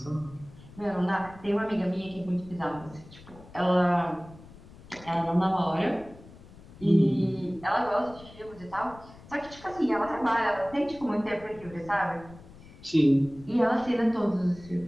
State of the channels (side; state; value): left; noise; rumble, 20 dB below the sound